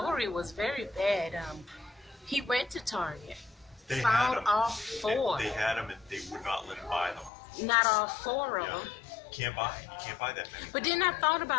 was very bad. He went to Target, found all 4. They had them and they would not let him buy them. Not all 4 of them. You can't buy that many. But then I thought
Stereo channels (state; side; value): drops out; right; at 7.3 s